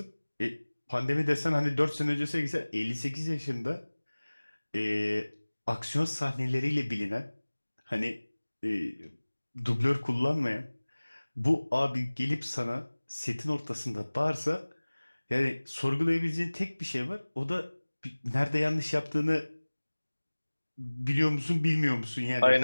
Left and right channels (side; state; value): both; inverted; correlation -1.00